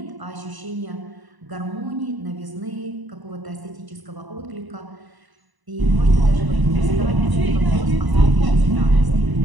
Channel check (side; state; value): left; late; 1.0 ms